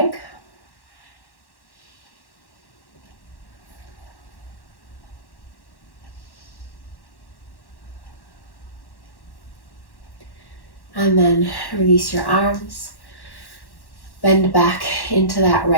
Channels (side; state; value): right; late; 1.1 ms